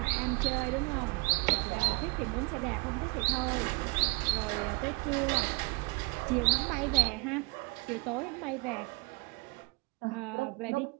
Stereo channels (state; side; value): quieter; left; 29.8 dB